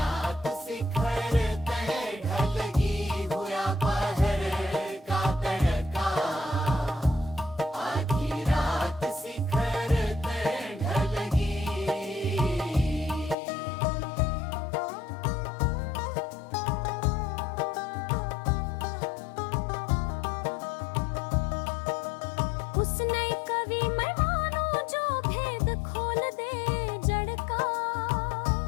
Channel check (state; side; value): drops out; right; at 13.4 s